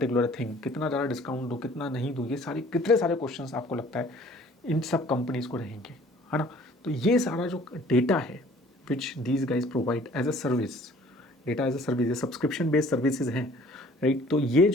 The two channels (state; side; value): normal; both; correlation 0.53